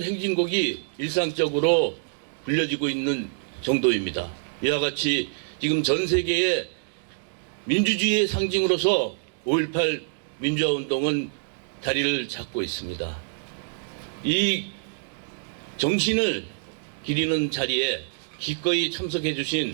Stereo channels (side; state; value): left; silent; digital silence